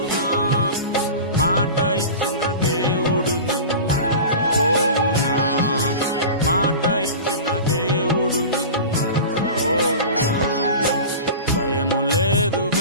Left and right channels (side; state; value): both; inverted; correlation -0.33